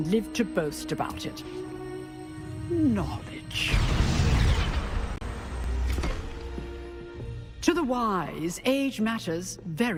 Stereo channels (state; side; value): identical; both; correlation 1.00